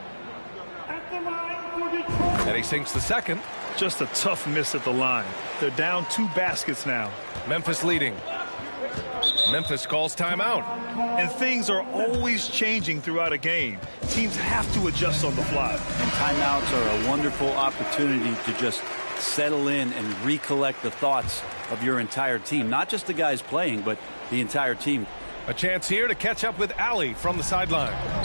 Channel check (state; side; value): inverted; both; correlation -1.00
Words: At the line for Detroit. And he sinks the second. Just a tough miss at the line. They're down 2 baskets now. Memphis leading. Memphis calls timeout. And things are always changing throughout a game. Teams have to adjust on the fly. And timeouts are a wonderful opportunity to just settle in and recollect the thoughts of your entire team. Not just the guys playing, but the entire team. A chance here to catch up with Allie from the sideline.